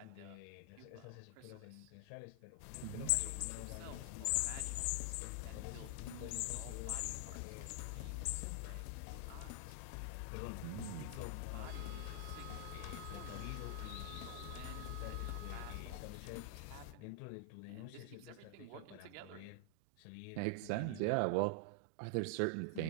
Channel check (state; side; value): different; both; correlation 0.00